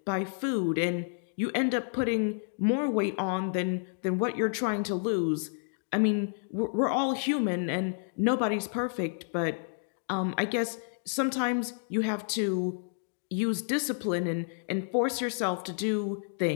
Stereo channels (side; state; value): right; silent; digital silence